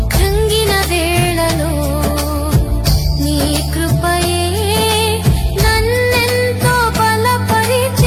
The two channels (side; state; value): both; identical; correlation 1.00